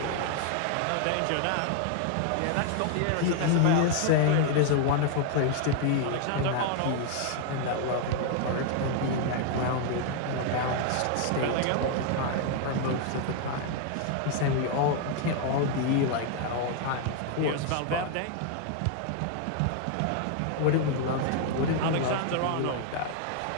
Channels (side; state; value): both; different; correlation 0.00